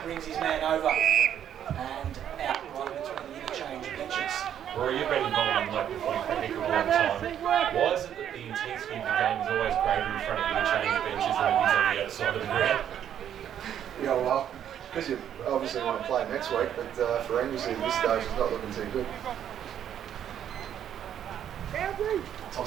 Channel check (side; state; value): left; quieter; 9.8 dB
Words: brings his man over and out right between the interchange benches. Rory, you've been involved in local footy for a heck of a long time. Why is it that the intensity of the game is always greater in front of the interchange benches than it is on the other side of the ground? Yeah, well, because you obviously want to play next week, but for Anglesea at this stage, it's not looking too good.